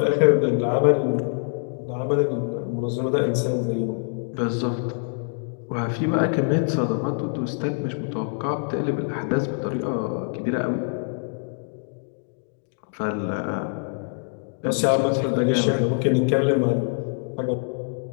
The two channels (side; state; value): right; silent; 61 dB below the other